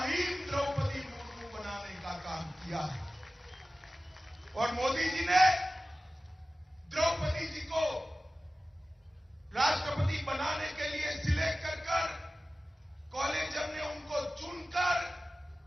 द्रौपदी मुर्मू बनाने का काम किया है। और मोदी जी ने द्रौपदी जी को राष्ट्रपति बनाने के लिए सिलेक्ट कर कॉलेज ने उनको चुनकर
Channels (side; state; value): both; normal; correlation 0.96